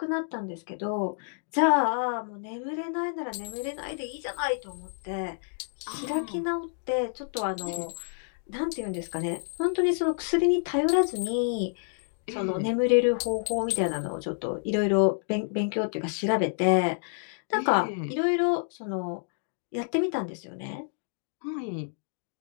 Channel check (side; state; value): right; silent; digital silence